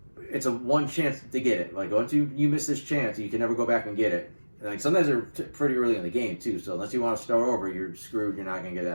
it's a one chance to get it. Like once you miss this chance, you can never go back and get it. And like sometimes they're pretty early in the game too. So unless you want to start over, you're screwed. You're not going to get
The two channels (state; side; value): inverted; both; correlation -1.00